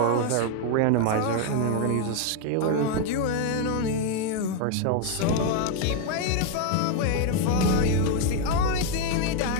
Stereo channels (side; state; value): both; different; correlation 0.01